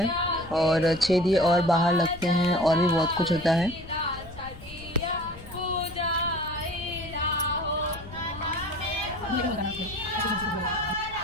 और 6 दिए और बाहर लगते हैं और भी बहुत कुछ होता है।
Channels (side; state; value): left; noise; rumble, 16 dB below the sound